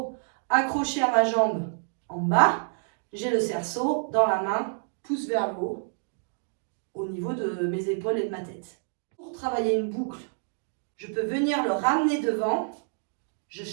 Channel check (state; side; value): silent; left; digital silence